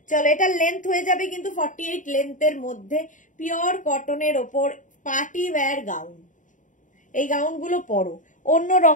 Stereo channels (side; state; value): right; late; 0.37 ms